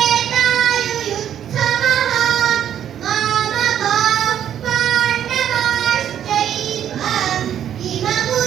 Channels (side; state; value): left; quieter; 10.0 dB